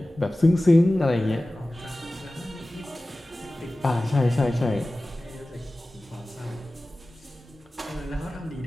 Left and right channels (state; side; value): normal; both; correlation 0.97